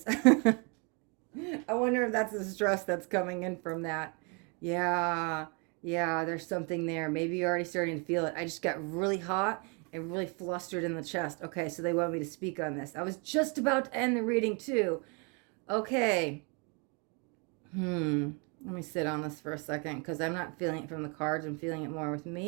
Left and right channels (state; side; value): quieter; left; 34.1 dB